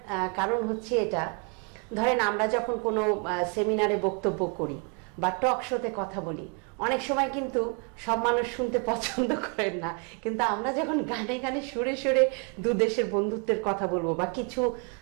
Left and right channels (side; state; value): left; quieter; 37.5 dB